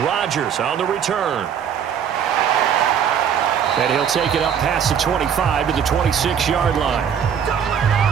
Rodgers on the return. And he'll take it up past the 25 to the 26-yard line.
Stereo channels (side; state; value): left; quieter; 8.1 dB